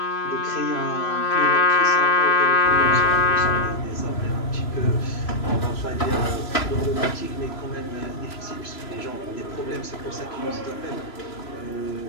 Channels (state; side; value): late; right; 3.0 ms